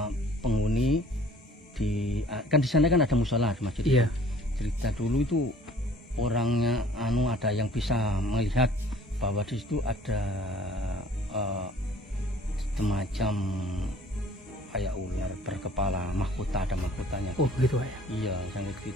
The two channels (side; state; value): both; normal; correlation 0.53